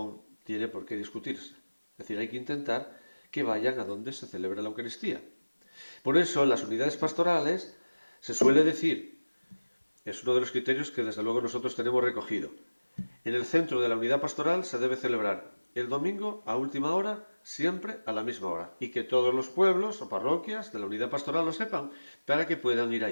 tiene por qué discutirse. Es decir, hay que intentar que vayan a donde se celebra la Eucaristía. Por eso, en las unidades pastorales se suele decir, es uno de los criterios que desde luego nosotros tenemos recogido, en el centro de la unidad pastoral se debe celebrar el domingo a última hora, siempre a la misma hora, y que todos los pueblos o parroquias de la unidad pastoral lo sepan, para que puedan ir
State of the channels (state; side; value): inverted; both; correlation -1.00